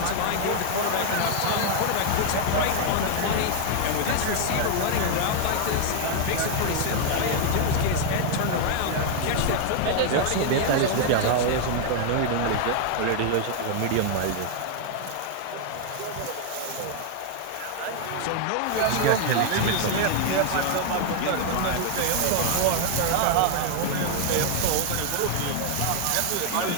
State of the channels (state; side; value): different; both; correlation 0.00